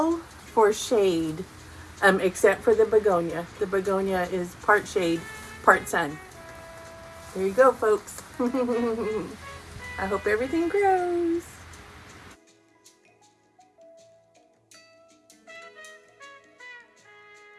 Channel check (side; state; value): both; identical; correlation 1.00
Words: for shade, except for the begonia. The begonia is part shade, part sun. There you go, folks. I hope everything grows.